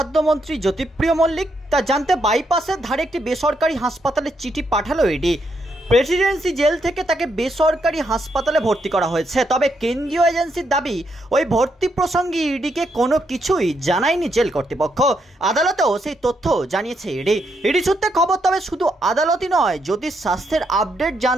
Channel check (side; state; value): both; normal; correlation 0.78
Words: জ্যোতিপ্রিয় মল্লিক? তা জানতে বাইপাসের ধারে একটি বেসরকারি হাসপাতালে চিঠি পাঠালো ইডি। প্রেসিডেন্সি জেল থেকে তাকে বেসরকারি হাসপাতালে ভর্তি করা হয়েছে। তবে কেন্দ্রীয় এজেন্সির দাবি, ওই ভর্তি প্রসঙ্গে ইডিকে কোনো কিছুই জানায়নি জেল কর্তৃপক্ষ। আদালতেও সেই তথ্য জানিয়েছে ইডি সূত্রে খবর। তবে শুধু আদালতই নয়, জ্যোতির স্বাস্থ্যের আপডেট